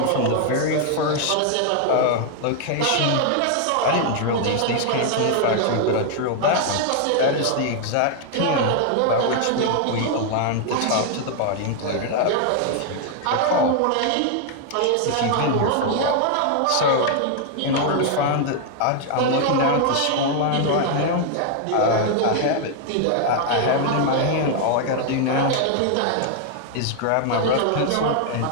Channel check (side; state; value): both; different; correlation 0.00